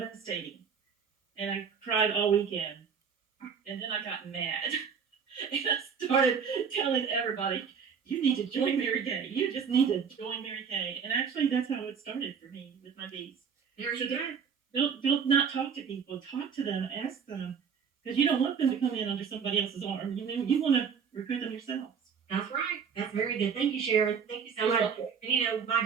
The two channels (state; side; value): quieter; left; 6.7 dB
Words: And I cried all weekend. And then I got mad. And I started telling everybody, you need to join Mary Kay. You just need to join Mary Kay. And actually, that's how it started for me with my bees. There you go. Don't not talk to people. Talk to them. Ask them. Because you don't want them to come in under somebody else's arm. You want to recruit them yourselves. That's right. That's very good. Thank you, Sharon. Thank you so much. And my